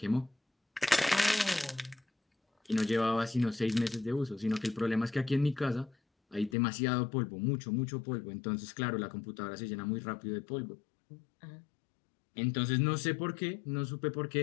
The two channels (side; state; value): right; drops out; at 6.6 s